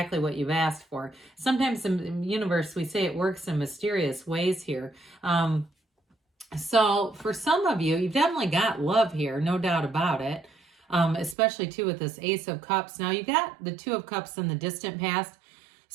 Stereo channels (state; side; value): drops out; left; at 11.4 s